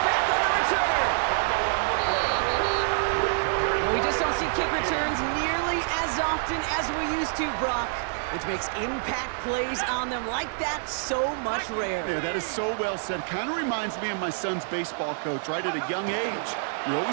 back on the return. We just don't see kick returns nearly as often as we used to, Brock, which makes impact plays on them like that so much rarer. Yeah, that is so well said. Kind of reminds me of my son's baseball coach, right at a young age. You're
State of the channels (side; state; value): left; silent; digital silence